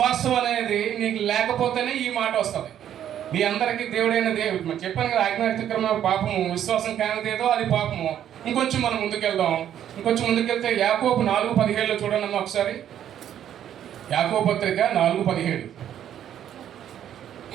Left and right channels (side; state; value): left; quieter; 10.4 dB